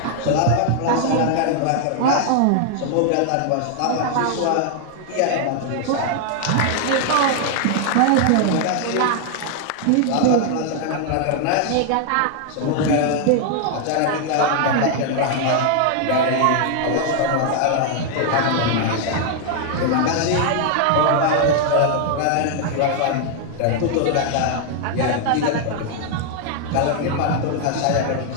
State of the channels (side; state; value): both; different; correlation 0.00